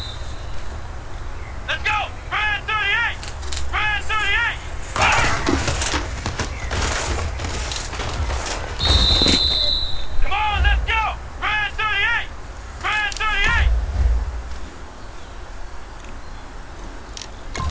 Let's go! Brand 38! Brand 38! Come on, let's go! Brand 38! Brand 38!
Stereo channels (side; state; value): both; identical; correlation 1.00